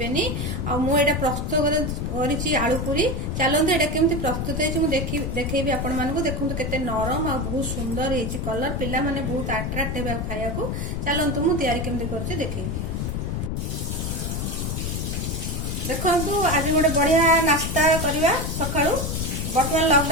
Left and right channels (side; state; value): left; noise; rumble, 2 dB below the sound